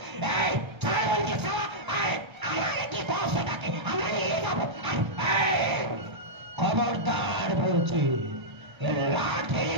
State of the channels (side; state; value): left; late; 1.3 ms